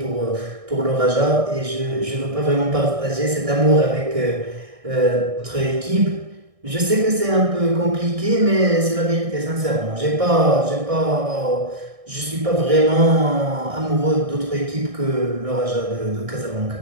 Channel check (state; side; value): late; left; 1.6 ms